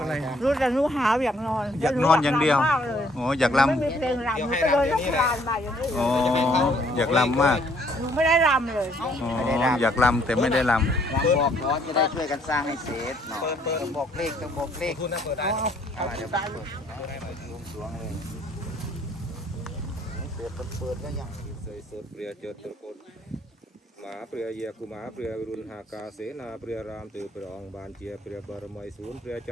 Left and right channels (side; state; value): both; normal; correlation 0.64